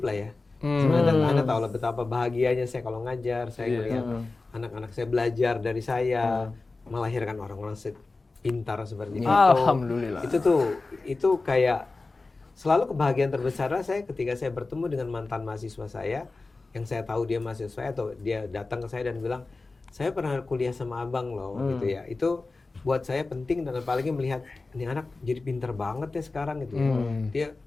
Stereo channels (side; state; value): right; quieter; 3.6 dB